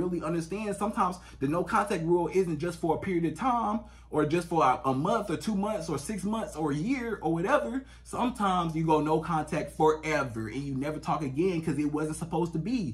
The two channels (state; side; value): identical; both; correlation 1.00